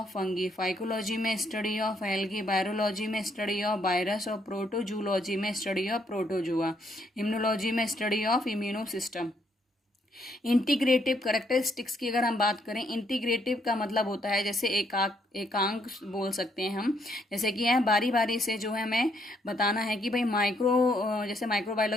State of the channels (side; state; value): both; normal; correlation 0.72